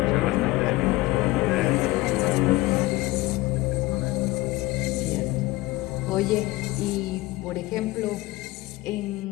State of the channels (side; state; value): right; quieter; 19.5 dB